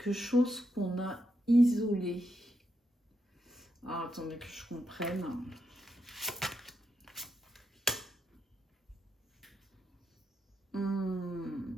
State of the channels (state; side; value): normal; both; correlation 0.83